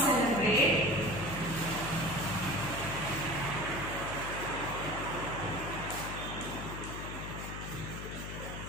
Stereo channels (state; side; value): noise; left; hum, 7 dB below the sound